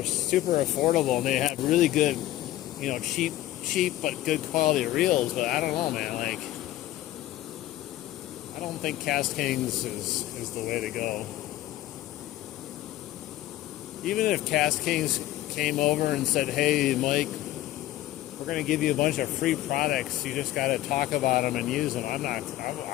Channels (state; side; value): quieter; right; 14.8 dB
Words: super affordable and they have really good, cheap but good quality reels. But I don't know, man. Like, I don't think Cast Kings is the way to go. Even if Cast Kings came over and said, hey, Mike, we're going to give you a bunch of free products. You just got to talk about them and use them.